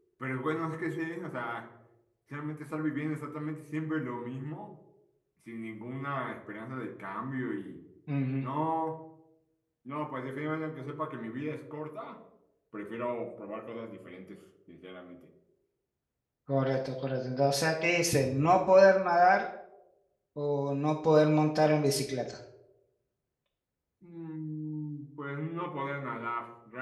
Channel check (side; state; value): both; identical; correlation 1.00